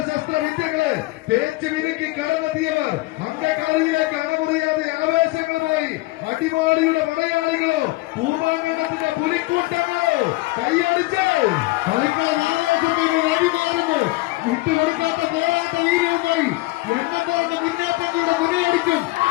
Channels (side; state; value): right; quieter; 20.9 dB